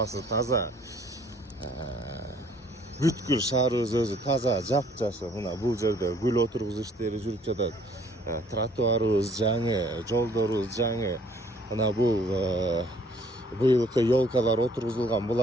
таза. Бүткүл шаарыбыз өзү таза, жап-жашыл. Мына бул жерде гүл отургузуу иштери жүрүп жатат. Тротуарыбыз жаңы, жолдорубуз жаңы. Мына бул быйылкы елкалар отургузулган.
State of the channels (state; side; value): normal; both; correlation 0.60